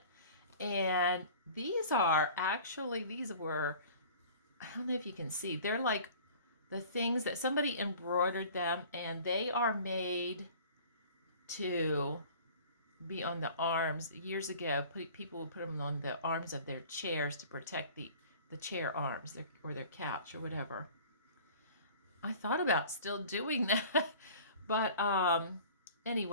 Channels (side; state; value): both; inverted; correlation -0.45